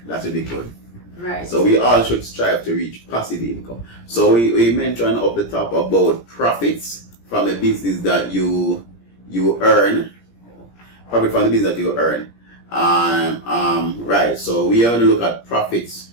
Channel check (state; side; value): late; right; 17 ms